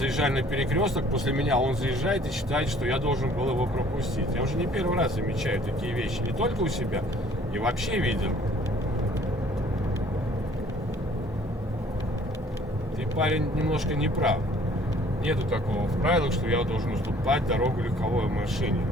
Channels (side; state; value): both; normal; correlation 0.56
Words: на перекресток, после меня он заезжает и считает, что я должен был его пропустить. Я уже не первый раз замечаю такие вещи, не только у себя, и вообще видел. Ты, парень, немножко не прав. Нету такого в правилах, что я должен уступать дорогу легковой машине,